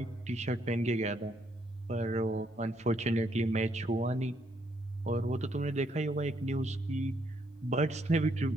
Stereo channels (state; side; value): normal; both; correlation 0.73